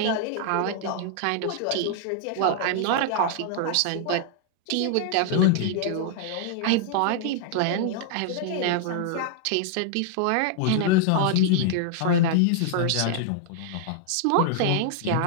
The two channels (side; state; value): both; different; correlation -0.01